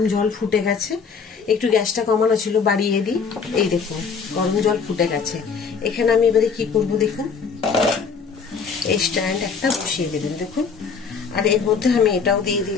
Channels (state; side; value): quieter; right; 5.6 dB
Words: জল ফুটে গেছে। একটু গ্যাসটা কমানো ছিল, বাড়িয়ে দিই। এই দেখুন গরম জল ফুটে গেছে। এখানে আমি এবারে কি করব দেখুন, এই স্ট্যান্ড একটা বসিয়ে দেবেন দেখুন। আর এর মধ্যে আমি এটাও দিয়ে